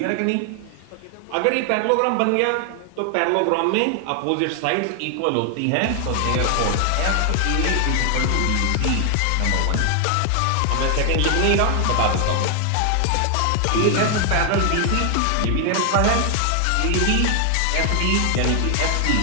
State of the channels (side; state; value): both; different; correlation 0.00